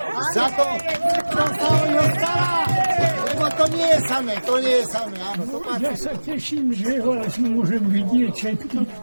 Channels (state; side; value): inverted; both; correlation -1.00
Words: Za to, čo sa o ňo stará. Lebo to nie je samé, áno. To Ja sa teším, že vás môžem vidieť všetky,